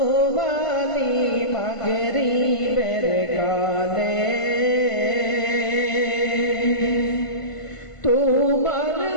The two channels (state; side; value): late; right; 1.5 ms